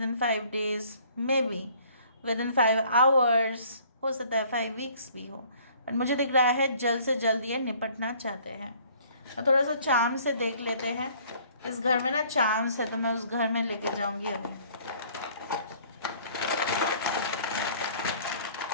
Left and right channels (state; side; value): inverted; both; correlation -0.56